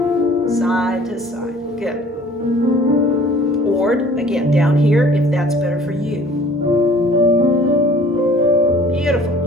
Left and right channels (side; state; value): both; normal; correlation 0.51